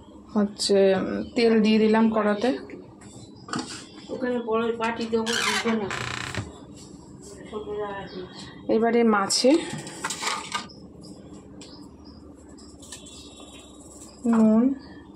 হচ্ছে তেল দিয়ে দিলাম কড়াতে। এবারে মাছে নুন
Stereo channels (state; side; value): identical; both; correlation 1.00